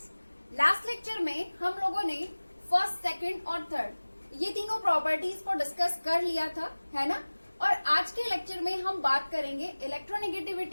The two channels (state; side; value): inverted; both; correlation -1.00